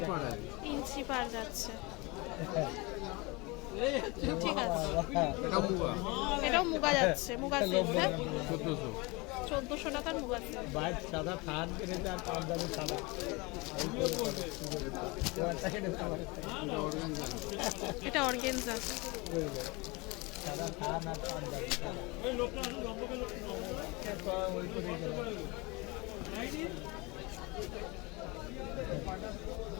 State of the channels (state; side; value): quieter; right; 25.8 dB